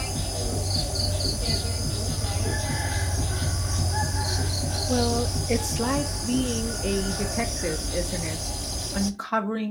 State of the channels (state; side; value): identical; both; correlation 1.00